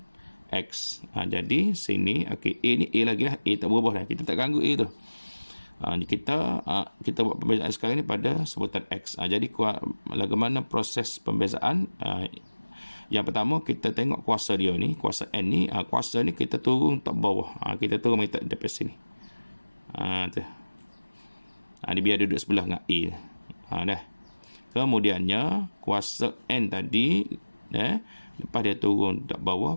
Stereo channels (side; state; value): both; inverted; correlation -1.00